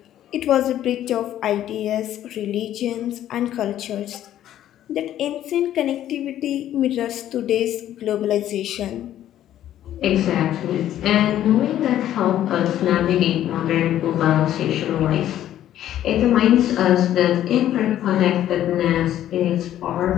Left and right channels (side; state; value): right; quieter; 12.0 dB